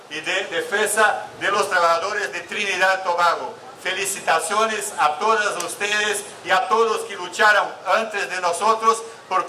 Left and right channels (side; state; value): both; identical; correlation 1.00